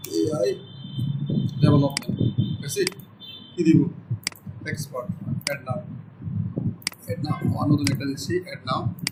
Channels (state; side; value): identical; both; correlation 1.00